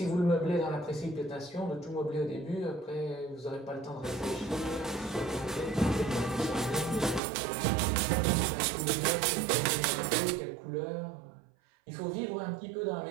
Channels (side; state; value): left; drops out; at 7.2 s